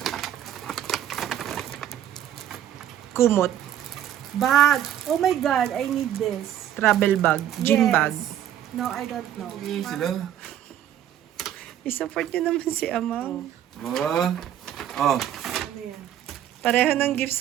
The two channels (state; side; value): quieter; left; 11.0 dB